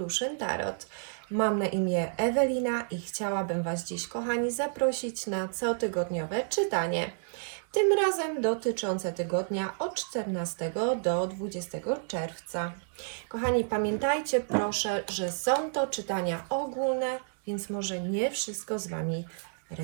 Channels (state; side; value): silent; left; digital silence